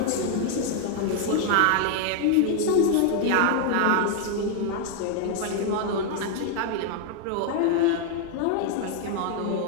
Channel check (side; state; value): both; different; correlation 0.00